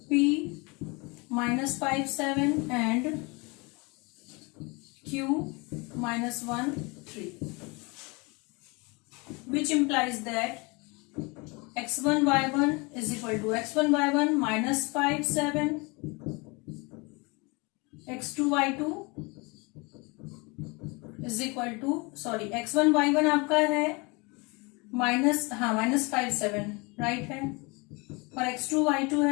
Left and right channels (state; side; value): quieter; right; 27.9 dB